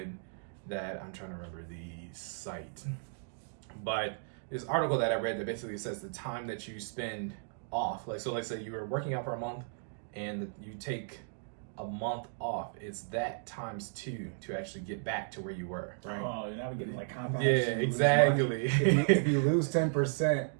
that I'm trying to remember the site, but this article that I read that basically says the time that you spend off, so let's say you were working out for a month and you take a month off, it's that times 2 to actually get back to where you were, right? Oh, you're not getting like compound. Yeah, exactly. If you lose 10%,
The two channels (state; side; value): silent; left; digital silence